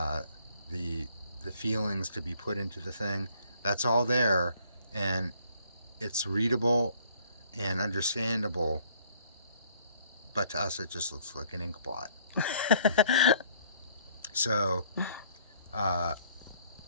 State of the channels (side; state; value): both; inverted; correlation -0.62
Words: the feelings to be put into the thing. That's all there, and it's readable and understandable, but to us it just looks like an ink blot. So